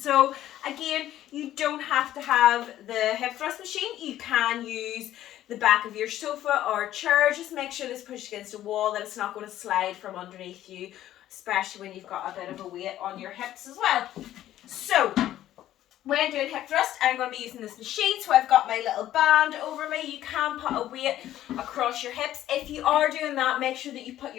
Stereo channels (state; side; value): quieter; right; 12.9 dB